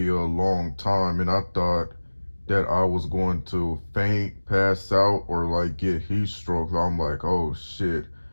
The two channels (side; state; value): both; inverted; correlation -1.00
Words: time, and I thought that I was going to faint, pass out, or like get heat stroke. I'm like, oh shit,